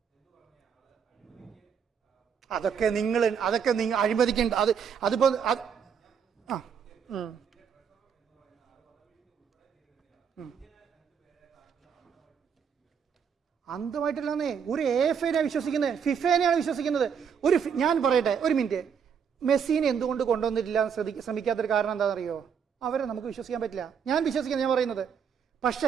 അതൊക്കെ നിങ്ങൾ അഴിമതിക്കേണ്ട. അതിപ്പോ അന്തമായിട്ടില്ലെന്നേ. ഒരു AFA വിശ്വസിക്കുന്നത്, ഫിഫേനെയാണ് വിശ്വസിക്കുന്നത്. ഞാൻ പറയട്ടെ ഒരു മിനിറ്റ്. മെസ്സിനെ എന്തുകൊണ്ട് കൊണ്ടുവന്നിട്ടില്ല ശ്രമിക്കാത്തൊരു കാരണം എന്താണെന്നറിയോ? അവരെ നമുക്ക് വിശ്വസിക്കാൻ പറ്റില്ല. ഞാൻ വിശ്വസിക്കുന്നത്, ഞാൻ പറയുന്നത്.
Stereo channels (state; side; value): quieter; left; 7.1 dB